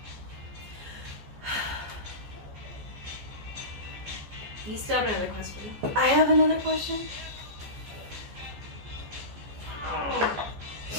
You still have another question. I have another question.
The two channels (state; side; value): late; left; 14 ms